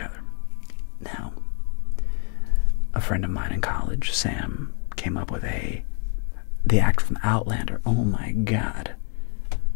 Now, a friend of mine in college, Sam, came up with the actor from Outlander. Oh my God.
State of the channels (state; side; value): quieter; right; 40.0 dB